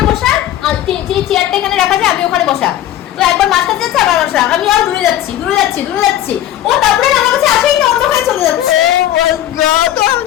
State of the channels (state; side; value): quieter; right; 12.5 dB